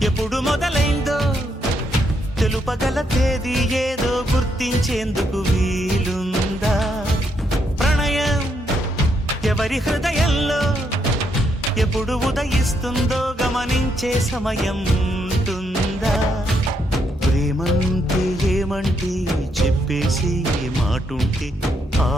ఎప్పుడు మొదలైందో తెలుపగల తేదీ ఏదో గుర్తించేందుకు వీలుందా ప్రణయం ఎవరి హృదయంలో ఎప్పుడు ఉదయిస్తుందో గమనించే సమయం ఉంటుందా ప్రేమంటే ఏమంటే చెప్పేసి మాటుంటే ఆ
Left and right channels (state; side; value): normal; both; correlation 0.77